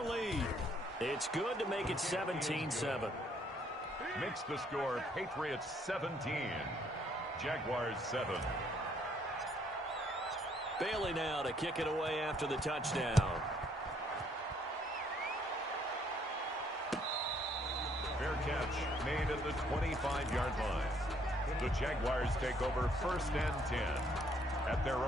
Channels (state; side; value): normal; both; correlation 0.66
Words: It's good to make it 17-7. Makes the score Patriots 17. Jaguars 7. Bailey now to kick it away after the touchdown. Fair catch made at the 25-yard line. The Jaguars take over 1st and 10 at their